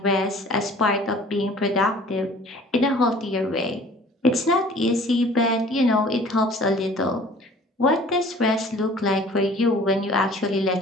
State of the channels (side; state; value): both; normal; correlation 0.49